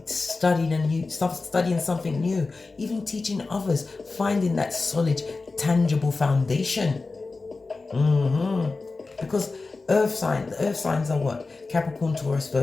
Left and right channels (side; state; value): right; quieter; 3.8 dB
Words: studying something new, even teaching others, finding that solid, tangible foundation. Because the earth signs are what? Capricorn, Taurus,